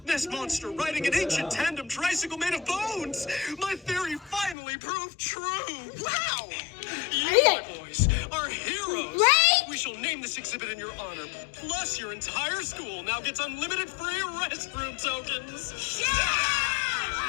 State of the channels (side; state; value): right; drops out; at 4.5 s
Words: Ness Monster riding an ancient tandem tricycle made of bones. My theory finally proved true. Wow! You, my boys, are heroes. Right? We shall name this exhibit in your honor. Plus, your entire school now gets unlimited free restroom tokens.